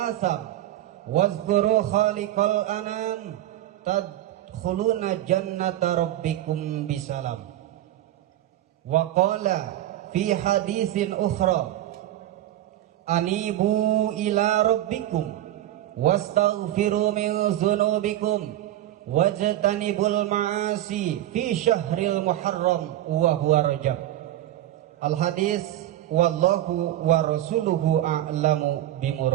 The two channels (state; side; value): quieter; left; 13.5 dB